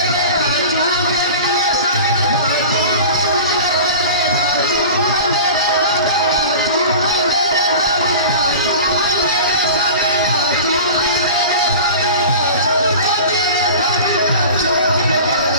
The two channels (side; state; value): both; inverted; correlation -0.36